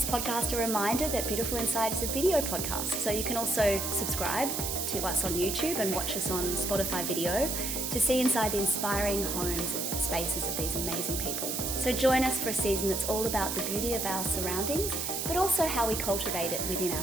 podcast, a reminder that Beautiful Inside is a video podcast, so you can also subscribe to us on YouTube and watch us on Spotify video to see inside the inspiring homes and spaces of these amazing people. So join us for a season that's all about the beauty of our surroundings, but also how we cultivate it within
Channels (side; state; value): right; noise; hiss, 2 dB below the sound